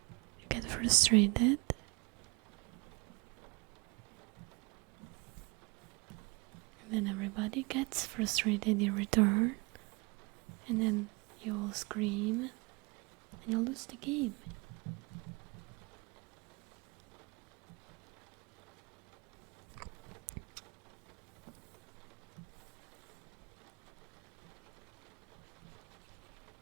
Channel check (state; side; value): quieter; left; 27.8 dB